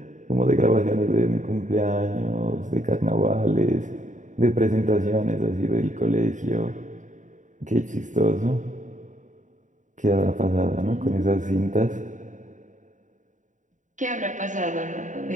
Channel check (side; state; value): left; late; 0.36 ms